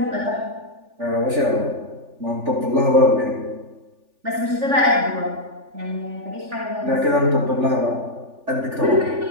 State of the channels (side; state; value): left; late; 3.4 ms